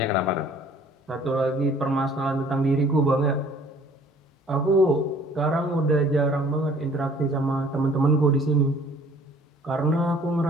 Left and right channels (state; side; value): normal; both; correlation 0.55